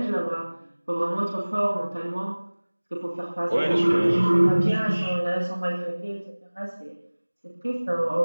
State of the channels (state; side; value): inverted; both; correlation -1.00